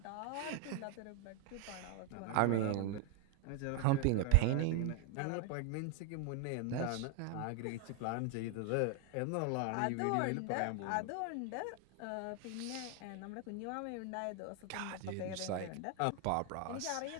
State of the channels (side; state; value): both; different; correlation 0.01